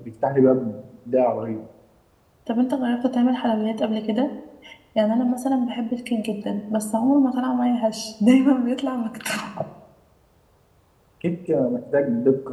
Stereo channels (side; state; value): both; identical; correlation 1.00